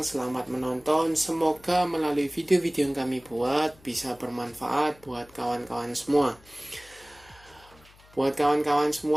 selamat menonton. Semoga melalui video-video yang kami buat bisa bermanfaat buat kawan-kawan semua. Buat kawan-kawan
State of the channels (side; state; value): left; noise; hum, 26 dB below the sound